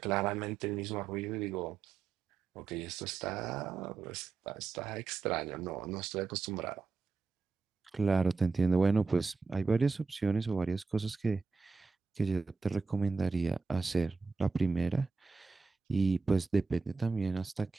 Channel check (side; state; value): left; quieter; 4.5 dB